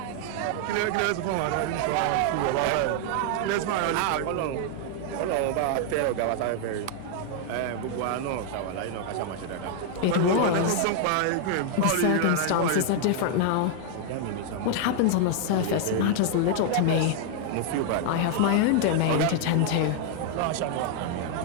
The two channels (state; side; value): different; both; correlation 0.00